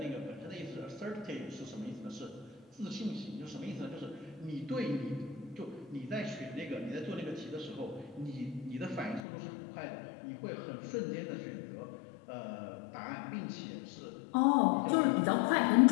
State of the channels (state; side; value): drops out; right; at 9.2 s